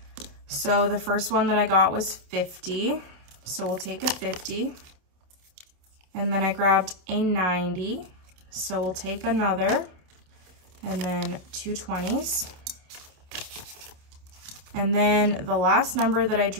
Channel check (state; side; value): late; left; 27 ms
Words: So the first one that I got was 50, so we'll take a 50. And then I grabbed a 90, so we'll take another, and then 2 20s. And then the last number that I